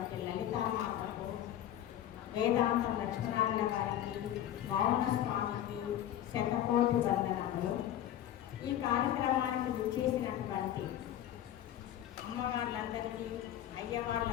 లలితామాతకు, వేదాంతం లక్ష్మణారాయణ గారికి, మౌన స్వామికి శతకోటి వందనములు. ఈ కార్యక్రమానికి విచ్చేసినటువంటి అమ్మవార్లందరికీ,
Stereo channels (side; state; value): right; quieter; 11.7 dB